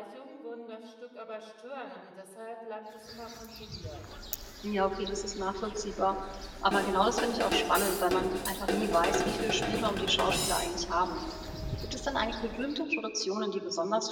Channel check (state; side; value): identical; both; correlation 1.00